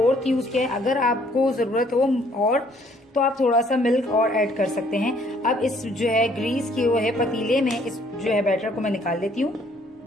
यूज किया है। अगर आपको जरूरत हो और तो आप थोड़ा सा मिल्क और ऐड कर सकते हैं। अब इस जो है ग्रीस किए हुए पतीले में इस जो है बैटर को मैं निकाल लेती हूँ।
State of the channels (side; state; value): both; normal; correlation 0.63